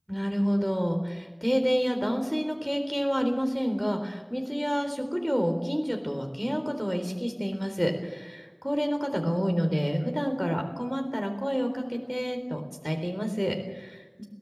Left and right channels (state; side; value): identical; both; correlation 1.00